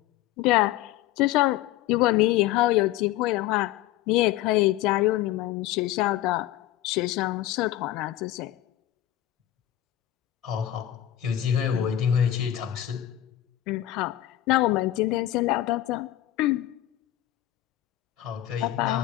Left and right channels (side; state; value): right; quieter; 13.7 dB